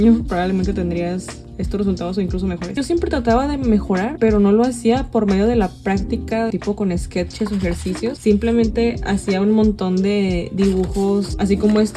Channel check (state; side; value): identical; both; correlation 1.00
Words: probablemente tendrías estos resultados o incluso mejores. Yo siempre trataba de mejorar, pero no lo hacía por medio de la práctica, tipo con sketches o ejercicios. Simplemente hacía un montón de dibujos, así como